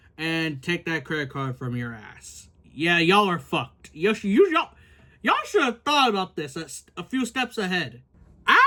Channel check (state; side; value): identical; both; correlation 1.00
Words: and take that credit card from your ass. Yeah, y'all are fucked. Y'all should have thought about this a few steps ahead.